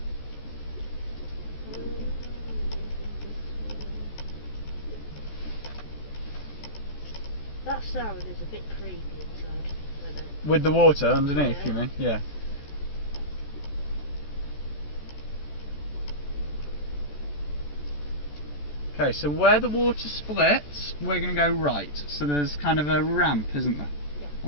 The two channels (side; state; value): right; late; 14 ms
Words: That sound is a bit creepy inside. I know. With the water underneath, Yeah. you mean? Yeah. Okay, so where the water splits, we're going to go right. So there's kind of a ramp, isn't there? Yeah.